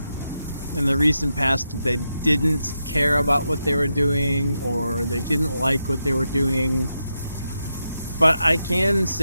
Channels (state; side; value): inverted; both; correlation -0.86